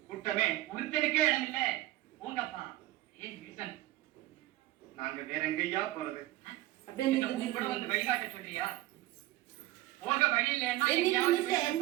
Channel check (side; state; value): left; quieter; 16.7 dB